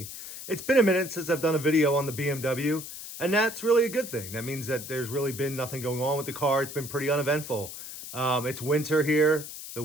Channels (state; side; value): noise; left; hiss, 11 dB below the sound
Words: It's been a minute since I've done a video on the BMW, and that's really a good thing. That means that there's really been nothing going on with the car. It's been pretty uneventful. It's winter here. The